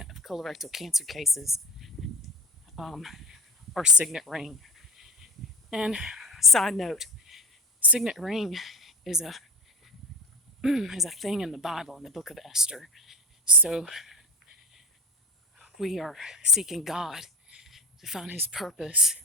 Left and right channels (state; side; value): normal; both; correlation 0.31